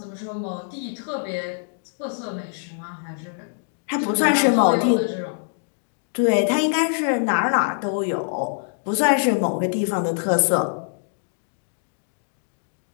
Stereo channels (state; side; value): silent; right; digital silence